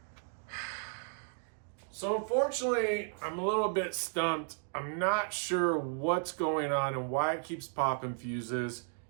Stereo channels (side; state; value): left; silent; 55 dB below the other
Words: So unfortunately, I'm a little bit stumped. I'm not sure what's going on and why it keeps popping fuses.